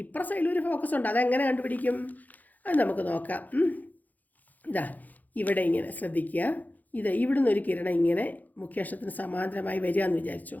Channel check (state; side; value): late; right; 0.081 ms